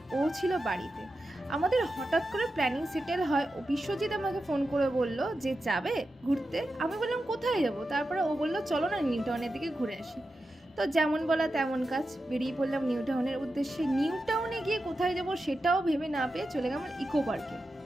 ও ছিল বাড়িতে। আমাদের হঠাৎ করে প্ল্যানিং সেটেল হয়। ও বিশ্বজিৎ আমাকে ফোন করে বলল যে যাবে ঘুরতে। আমি বললাম কোথায় যাব? তারপরে ও বলল চলো না নিউ টাউনের দিকে ঘুরে আসি। তো যেমন বলা তেমন কাজ, বেরিয়ে পড়লাম নিউ টাউনের উদ্দেশ্যে। নিউ টাউনে গিয়ে কোথায় যাব সেটাও ভেবে না পেয়ে চলে গেলাম ইকো পার্কে।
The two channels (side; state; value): both; normal; correlation 0.90